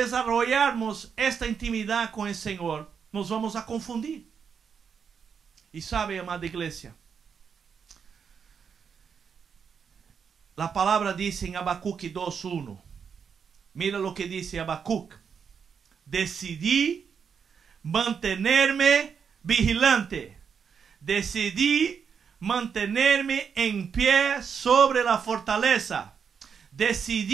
esta intimidad con el Señor, nos vamos a confundir. Y sabe, amada iglesia, la palabra dice en Habacuc 2:1. Mira lo que dice Habacuc. Decidí mantenerme vigilante. Decidí mantenerme en pie sobre la fortaleza.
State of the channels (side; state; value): left; quieter; 6.7 dB